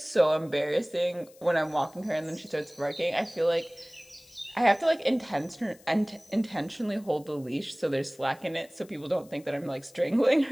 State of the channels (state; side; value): noise; left; hiss, 26 dB below the sound